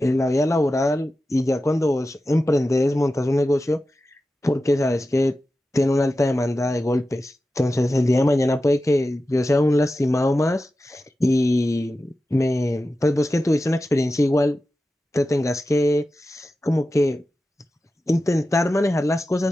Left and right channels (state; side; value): normal; both; correlation 0.93